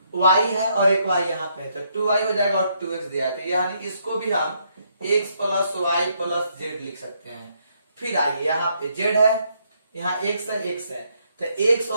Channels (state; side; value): inverted; both; correlation -0.74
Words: y है और एक y यहाँ पे है तो 2y हो जाएगा और 2x दिया है, तो यानी इसको भी हम x plus y plus z लिख सकते हैं। फिर आइए यहाँ पे z है, यहाँ x है तो x